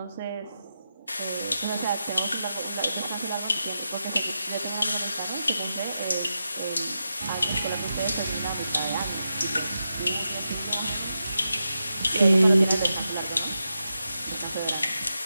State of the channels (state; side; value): inverted; both; correlation -0.88